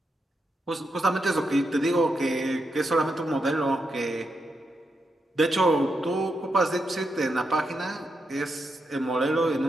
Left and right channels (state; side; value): normal; both; correlation 0.84